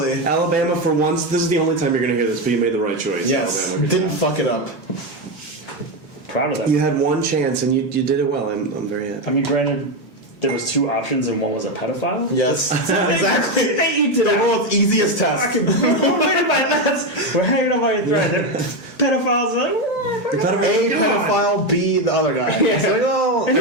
Alabama, for once, this is the only time you're going to hear this, but you made the right choice. Yes, Alabama. didn't fuck it up. Proud of that. You had one chance, and you did it well. I'm very happy. I mean, granted, there was 2 options, and one was a pedophile. Yes, exactly. They eat The world's easiest test. We're hanging on by a thread. Pedophiles are like, A pedophile, B the other guy. It's like, oh, and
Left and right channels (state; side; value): normal; both; correlation 0.10